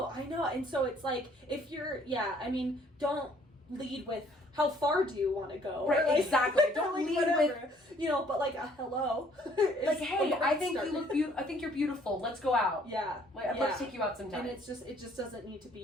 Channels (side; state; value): both; normal; correlation 0.61